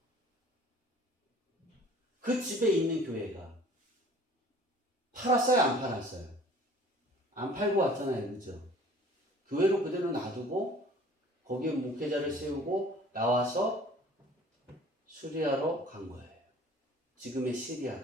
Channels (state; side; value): normal; both; correlation 0.49